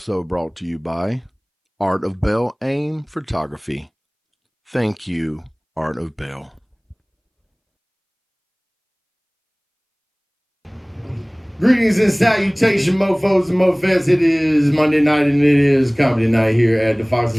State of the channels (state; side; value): identical; both; correlation 1.00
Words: brought to you by Art of Bell Aim Photography. Thank you, Art of Bell. Greetings and salutation, mofos and mofettes. It is Monday night and it is comedy night here at the